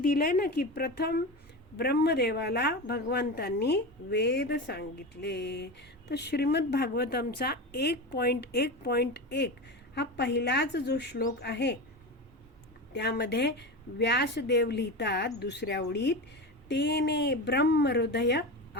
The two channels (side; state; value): both; normal; correlation 0.24